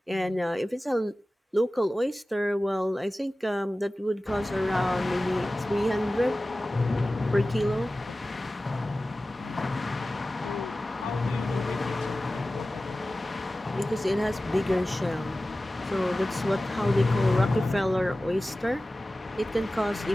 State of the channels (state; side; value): normal; both; correlation 0.96